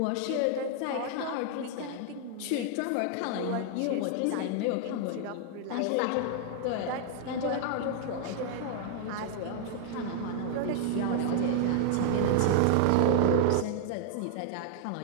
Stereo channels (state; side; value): different; both; correlation 0.00